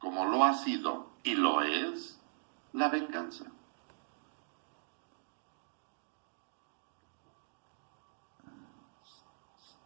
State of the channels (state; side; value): silent; left; digital silence